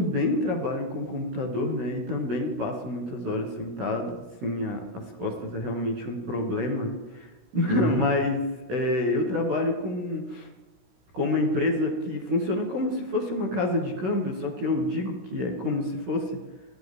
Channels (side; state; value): left; late; 16 ms